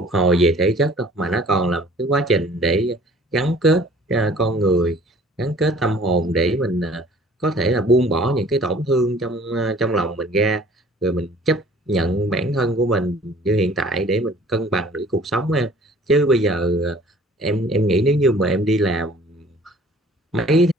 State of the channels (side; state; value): both; normal; correlation 0.52